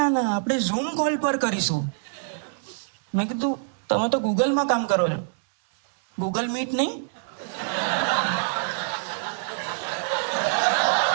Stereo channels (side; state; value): left; silent; digital silence